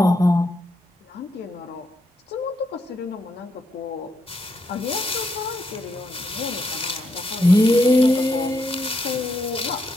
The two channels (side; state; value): both; normal; correlation 0.80